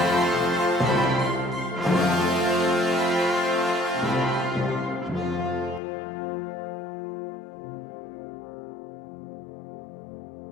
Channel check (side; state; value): right; drops out; at 5.8 s